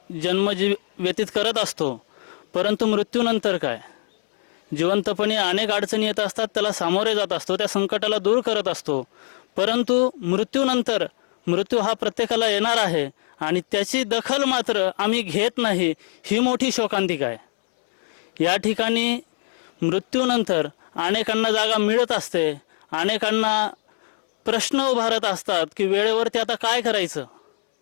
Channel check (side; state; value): right; silent; 64 dB below the other